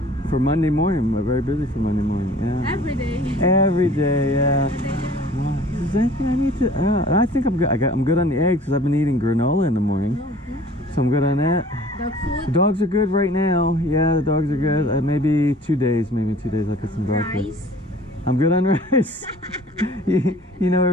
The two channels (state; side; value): normal; both; correlation 0.49